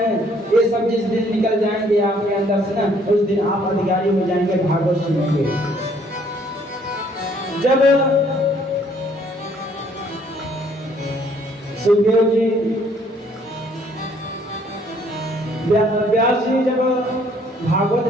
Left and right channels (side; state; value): both; normal; correlation 0.63